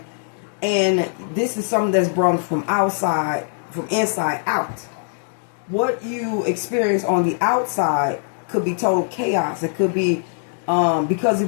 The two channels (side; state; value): right; silent; digital silence